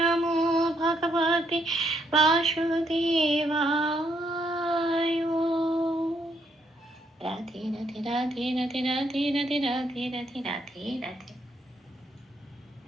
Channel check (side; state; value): both; normal; correlation 0.74